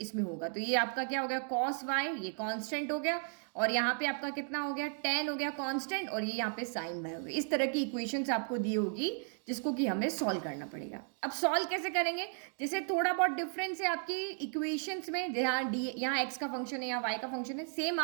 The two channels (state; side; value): silent; left; 55 dB below the other